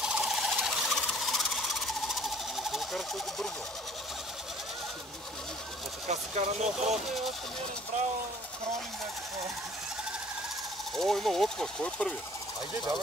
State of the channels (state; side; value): normal; both; correlation 0.54